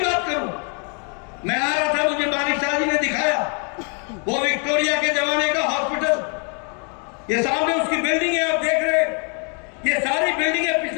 बात करूं, मैं आ रहा था, मुझे मानिक शाह जी ने दिखाया वो विक्टोरिया के जमाने का हॉस्पिटल। ये सामने उसकी बिल्डिंग है, आप देख रहे हैं। ये सारी बिल्डिंगें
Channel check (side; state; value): right; quieter; 39.0 dB